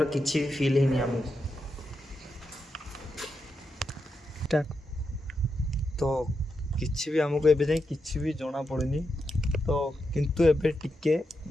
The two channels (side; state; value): both; normal; correlation 0.85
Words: କିଛି ବି ଫିଲ୍ ହେଇନି ଆମକୁ। ତ କିଛି ବି ଆମକୁ ଏବେ ଯାଏଁ କିଛି ବି ଜଣା ପଡ଼ୁନି। ତ କିନ୍ତୁ ଏବେ ଟିକେ